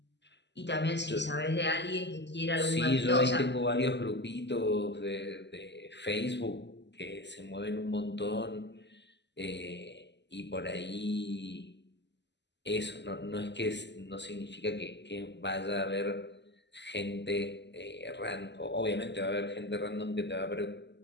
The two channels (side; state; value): right; late; 0.51 ms